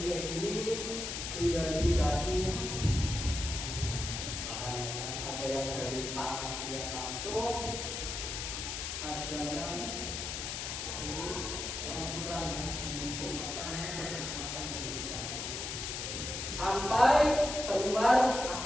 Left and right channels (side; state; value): left; noise; hiss, 4 dB below the sound